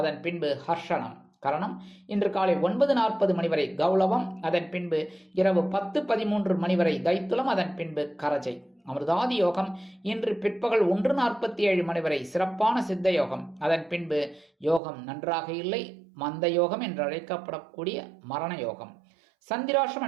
பின்பு ஹர்ஷனம். கரணம் இன்று காலை 9:40 மணி வரை கௌளவம், அதன் பின்பு இரவு 10:13 மணி வரை தைத்துலம், அதன் பின்பு கரஜை. அமிர்தாதி யோகம் இன்று பிற்பகல் 1:47 மணி வரை சிறப்பான சித்த யோகம், அதன் பின்பு யோகம் நன்றாக இல்லை, மந்த யோகம் என்று அழைக்கப்படக்கூடிய மரண யோகம். சந்திராஷ்டம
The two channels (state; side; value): drops out; left; at 14.8 s